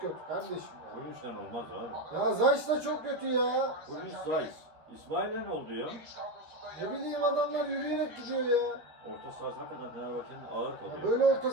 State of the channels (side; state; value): left; late; 13 ms